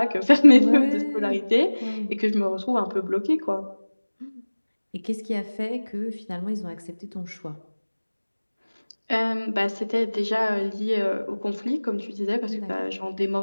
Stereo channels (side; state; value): both; inverted; correlation -1.00